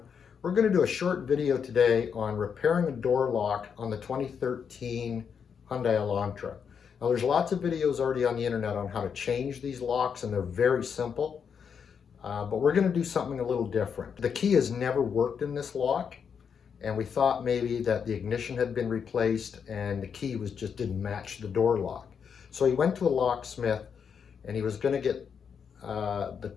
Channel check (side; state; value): right; quieter; 6.9 dB